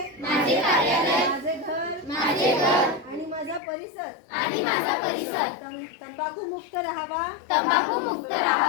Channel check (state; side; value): drops out; right; at 3.6 s